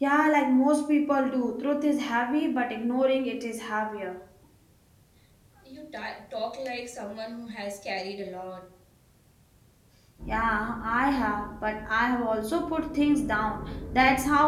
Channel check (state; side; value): identical; both; correlation 1.00